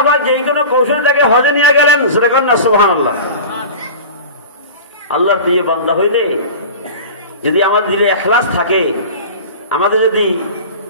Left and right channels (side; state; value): both; inverted; correlation -0.35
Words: পাক যেই কোনো কৌশলে তাকে হজে নিয়ে গেলেন। জোরে বলেন না সুবহানাল্লাহ। আল্লাহর প্রিয় বান্দা হইলে যদি আমাদের দিলে ইখলাস থাকে, আমাদের যদি